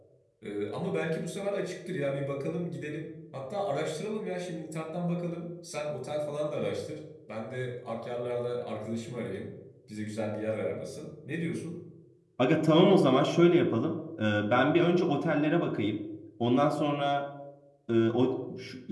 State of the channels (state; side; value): identical; both; correlation 1.00